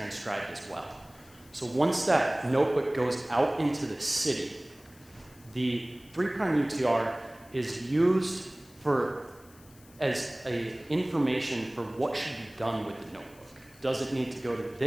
as well. So once that notebook goes out into the city, the 3' UTR is used as information for what should be done with the notebook. Does it need to go to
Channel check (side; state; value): left; noise; hiss, 25 dB below the sound